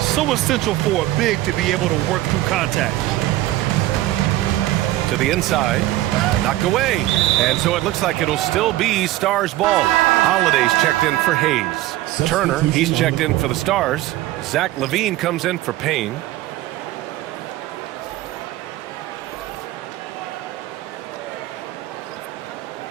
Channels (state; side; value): quieter; left; 16.0 dB